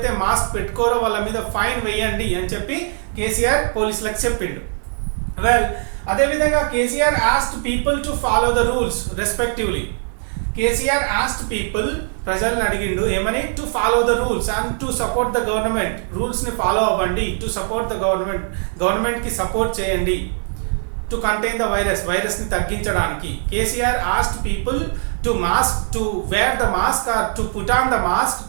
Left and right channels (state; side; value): silent; left; 56 dB below the other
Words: మాస్క్ పెట్టుకోరో వాళ్ళ మీద ఫైన్ వేయండి అని చెప్పి కేసీఆర్ పోలీసులకు చెప్పిండు. వెల్, అదేవిధంగా KCR asked people to follow the rules respectively. KCR asked people, ప్రజల్ని అడిగిండు ఏమని? To follow the rules and to support the government. రూల్స్ని ఫాలో అవ్వండి. టు సపోర్ట్ ద గవర్నమెంట్కి సపోర్ట్ చేయండి. టు కంటైన్ ద వైరస్ని తగ్గించడానికి. KCR asked people to wear the mask or to put on the mask